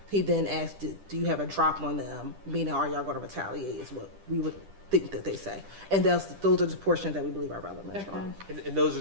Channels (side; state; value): left; late; 10 ms